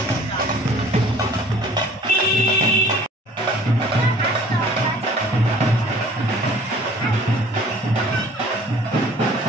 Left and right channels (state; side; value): normal; both; correlation 0.51